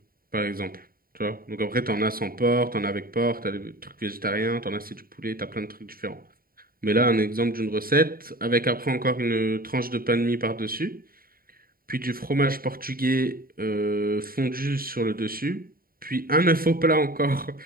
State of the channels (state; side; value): late; left; 0.43 ms